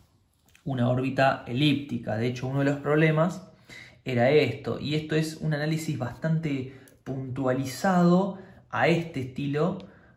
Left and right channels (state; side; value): identical; both; correlation 1.00